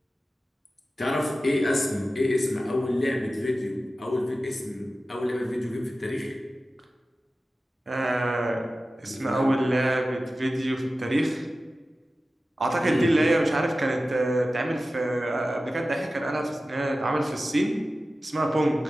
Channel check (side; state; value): both; normal; correlation 0.95